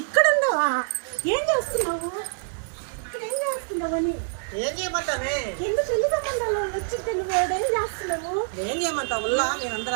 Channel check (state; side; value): silent; left; 61 dB below the other